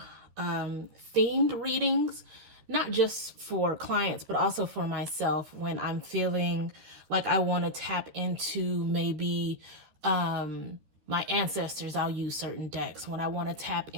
themed readings, not just for clients, but also for myself when I'm feeling like I want to tap into maybe my ancestors. I'll use certain decks. When I want to tap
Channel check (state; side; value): late; left; 13 ms